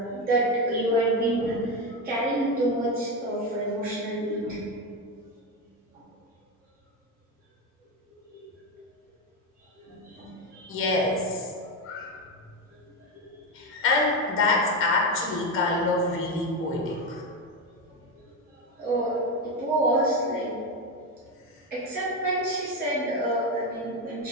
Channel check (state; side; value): normal; both; correlation 0.13